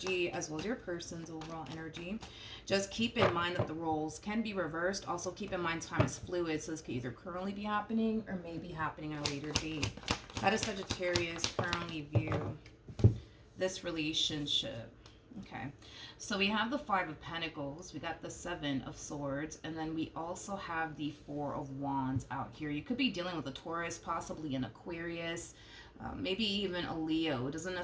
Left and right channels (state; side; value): identical; both; correlation 1.00